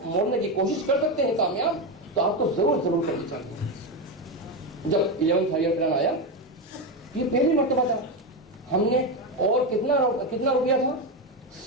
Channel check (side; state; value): both; normal; correlation 0.12